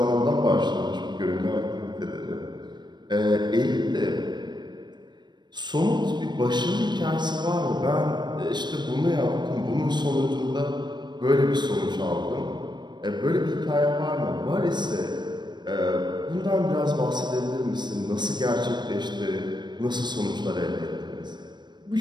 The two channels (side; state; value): left; late; 0.21 ms